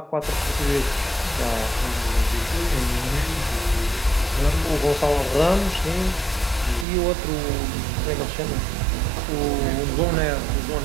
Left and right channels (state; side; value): drops out; left; at 6.9 s